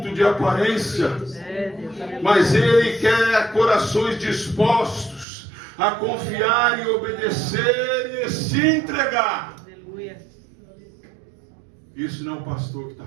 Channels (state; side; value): drops out; left; at 5.2 s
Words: de aparência. Mas Ele quer corações dispostos a confiar e obedecer e se entregar. Isso não é o pastor que está